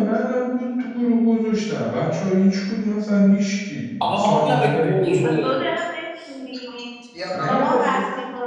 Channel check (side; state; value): both; identical; correlation 1.00